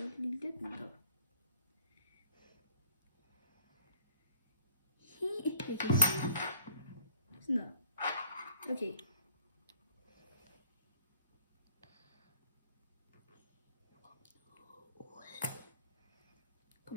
Lidt mindre. Sådan der. Okay.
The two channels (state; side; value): inverted; both; correlation -0.57